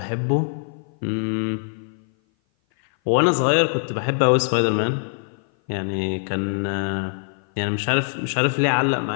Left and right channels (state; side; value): silent; right; 57 dB below the other